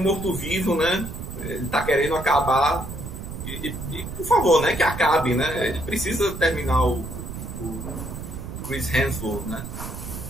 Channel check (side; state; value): right; noise; rumble, 8 dB below the sound